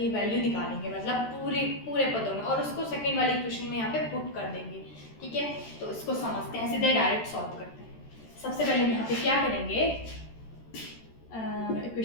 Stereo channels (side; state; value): right; late; 13 ms